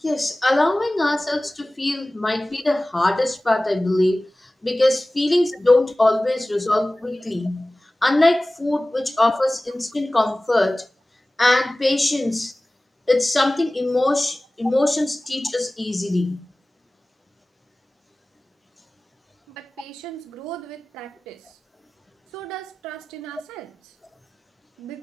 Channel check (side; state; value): both; normal; correlation 0.98